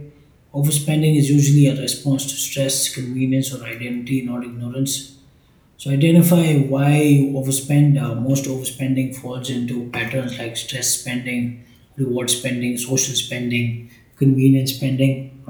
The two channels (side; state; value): both; identical; correlation 1.00